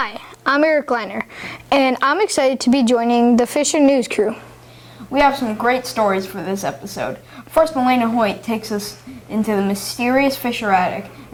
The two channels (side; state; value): both; identical; correlation 1.00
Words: I'm Eric Leiner, and I'm excited to be joining the Fisher News crew. We have some great stories for this episode. First, Melena Hoyt takes us into the mysterious Fisher attic,